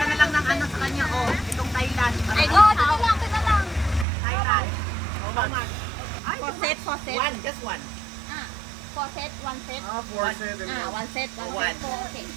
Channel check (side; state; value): left; drops out; at 4.0 s